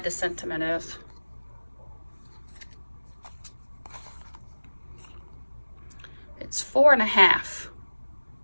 the sentiment is. It's 4 1/2.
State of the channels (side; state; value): both; inverted; correlation -1.00